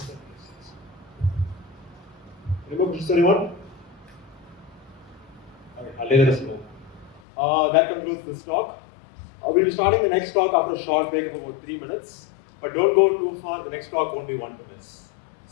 that make sense? Any more questions, anyone? Okay, I'll let us know. That concludes this talk. We'll be starting the next talk after a short break of about 3 minutes. But don't go too far, the next talk won't be 1 minute.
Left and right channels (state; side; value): drops out; right; at 7.2 s